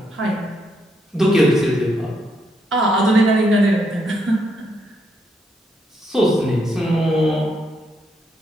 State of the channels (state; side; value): normal; both; correlation 0.77